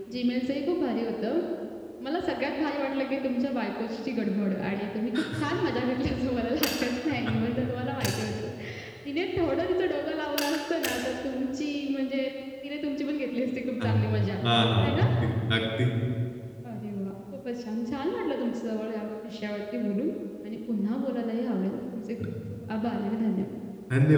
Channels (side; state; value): both; identical; correlation 1.00